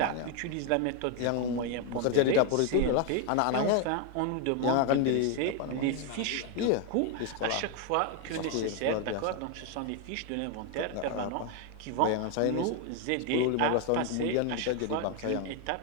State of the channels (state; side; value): different; both; correlation 0.01